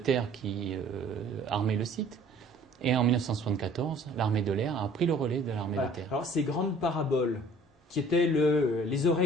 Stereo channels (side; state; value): both; normal; correlation 0.54